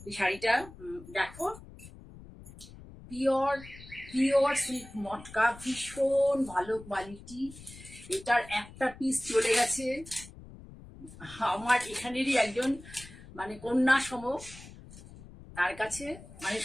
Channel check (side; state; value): left; noise; rumble, 17 dB below the sound